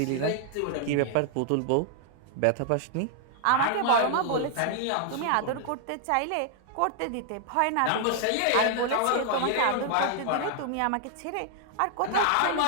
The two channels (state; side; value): different; both; correlation -0.01